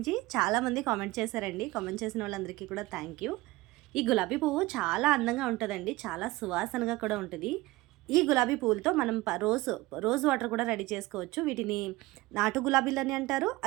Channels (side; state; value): left; quieter; 20.0 dB